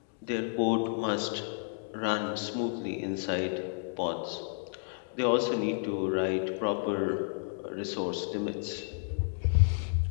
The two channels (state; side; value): silent; right; digital silence